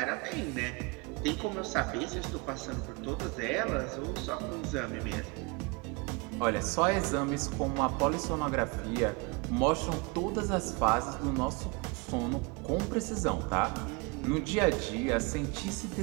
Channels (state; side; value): quieter; left; 28.1 dB